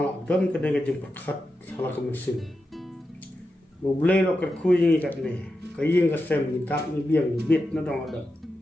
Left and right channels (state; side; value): normal; both; correlation 0.89